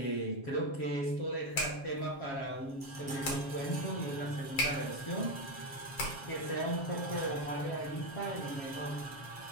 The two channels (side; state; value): right; late; 7.4 ms